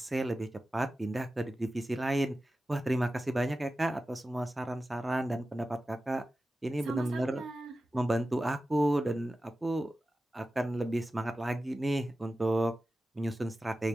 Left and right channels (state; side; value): normal; both; correlation 0.94